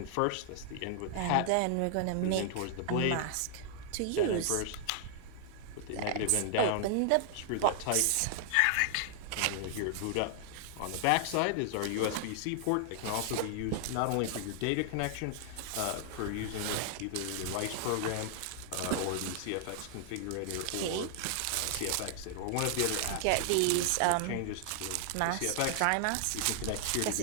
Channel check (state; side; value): different; both; correlation 0.00